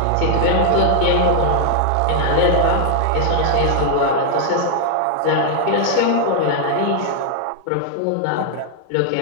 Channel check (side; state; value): both; different; correlation 0.00